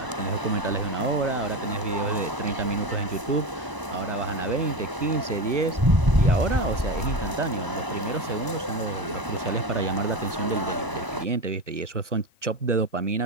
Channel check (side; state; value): left; late; 1.0 ms